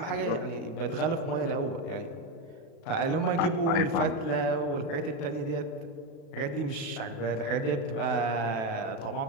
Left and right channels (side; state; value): right; late; 36 ms